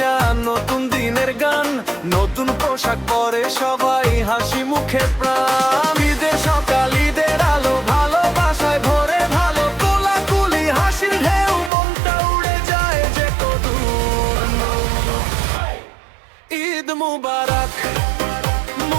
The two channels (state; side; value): drops out; left; at 11.7 s